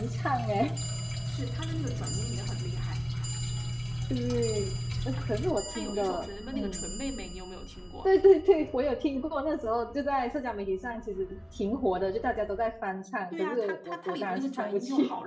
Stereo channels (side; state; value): both; identical; correlation 1.00